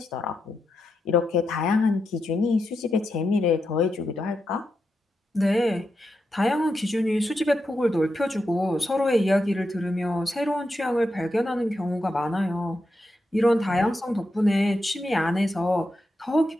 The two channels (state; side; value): normal; both; correlation 0.86